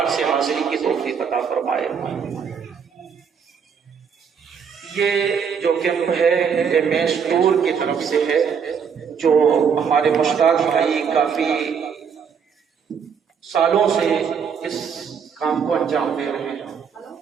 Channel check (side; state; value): left; quieter; 6.9 dB